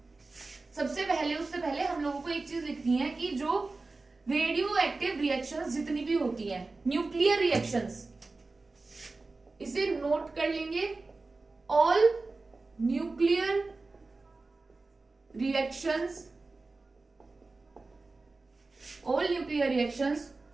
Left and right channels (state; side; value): quieter; left; 3.6 dB